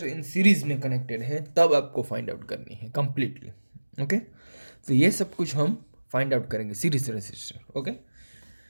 इन सीरीज में कनेक्टेड है तब आपको फाइंड आउट करनी है कंप्लीटली। ओके, तो ये सब कुछ हम फाइंड आउट करेंगे सीरीज रेजिस्टर। ओके,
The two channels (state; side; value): inverted; both; correlation -1.00